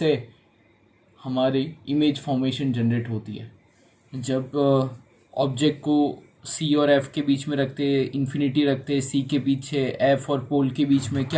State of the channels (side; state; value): both; identical; correlation 1.00